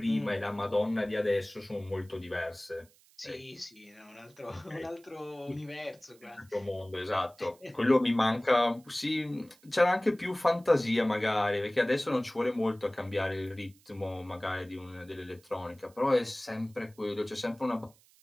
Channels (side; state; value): right; noise; hiss, 29 dB below the sound